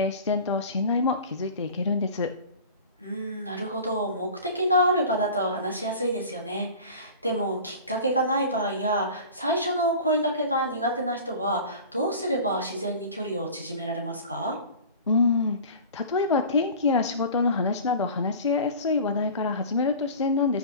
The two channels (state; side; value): inverted; both; correlation -0.39